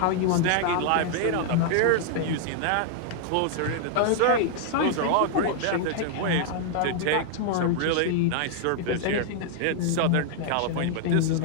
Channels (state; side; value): different; both; correlation 0.00